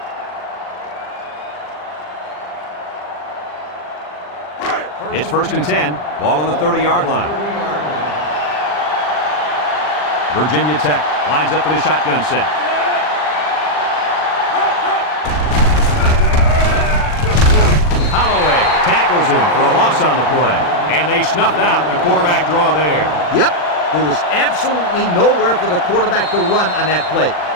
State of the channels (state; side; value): late; right; 40 ms